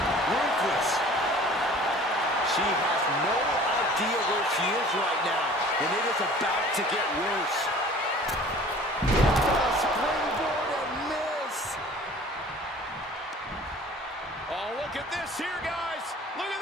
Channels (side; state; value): both; normal; correlation 0.47